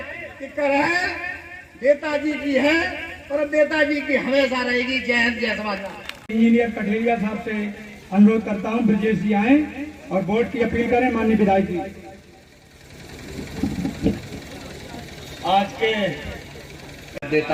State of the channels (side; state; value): both; identical; correlation 1.00